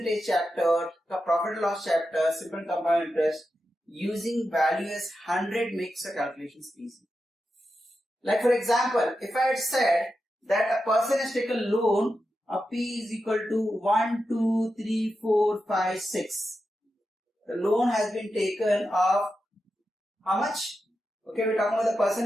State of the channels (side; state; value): both; normal; correlation 0.89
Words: chapter, the profit and loss chapter, simple and compound interest, using value as 100 makes the calculations easy. Like for example, if I had said that a person has taken loan of P is equal to 1, 2, 3, 4, 5, 6. The loan has been taken of how much? Okay, we're talking about the